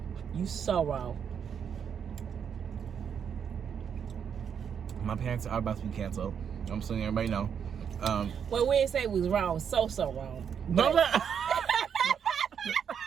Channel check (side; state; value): left; quieter; 7.6 dB